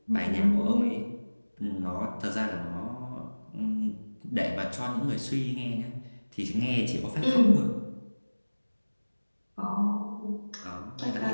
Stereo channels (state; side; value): inverted; both; correlation -1.00